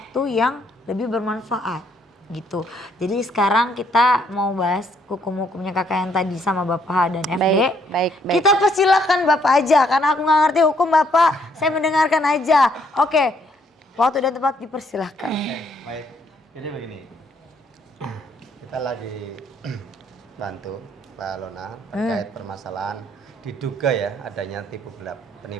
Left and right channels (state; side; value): normal; both; correlation 0.69